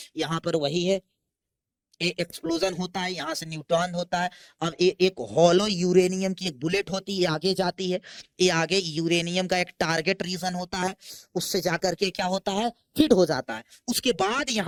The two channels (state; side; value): identical; both; correlation 1.00